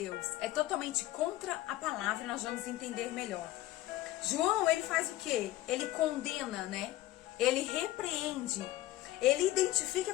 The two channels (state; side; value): quieter; right; 15.7 dB